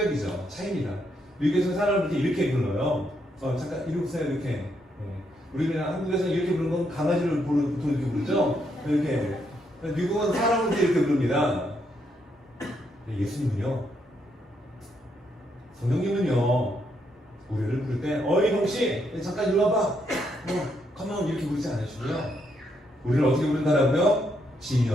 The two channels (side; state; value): both; normal; correlation 0.77